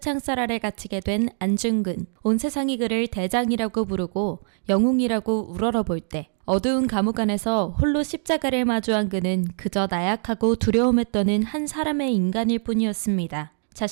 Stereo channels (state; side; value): silent; left; digital silence